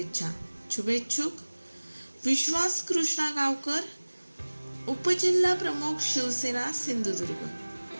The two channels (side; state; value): both; inverted; correlation -1.00